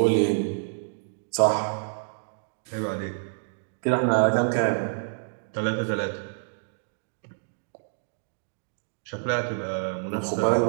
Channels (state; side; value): silent; left; digital silence